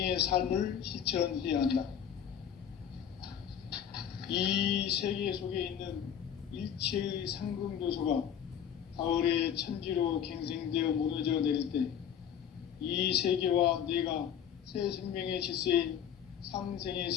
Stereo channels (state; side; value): quieter; right; 8.9 dB